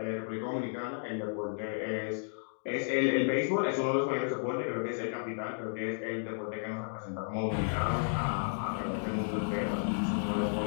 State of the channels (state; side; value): silent; right; digital silence